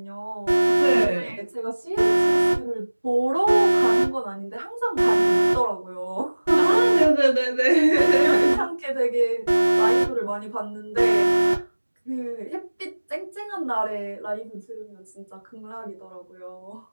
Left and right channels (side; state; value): both; inverted; correlation -1.00